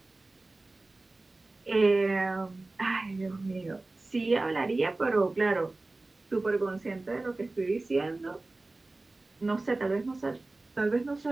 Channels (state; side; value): quieter; left; 3.1 dB